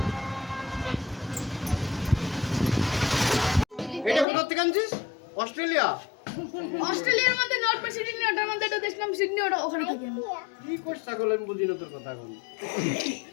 এটা কোথা থেকে আনছিস? অস্ট্রেলিয়া? অস্ট্রেলিয়ার মধ্যে নর্থ সিডনি, ওটার মধ্যে একটা দেশ নাম সিডনি, ওটা ওখানে থাকি আমি। কি করছ ছাগল, আমি বুঝি না তোর কথা এখন।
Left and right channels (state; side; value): drops out; right; at 4.2 s